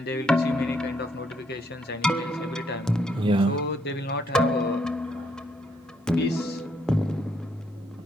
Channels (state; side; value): normal; both; correlation 0.72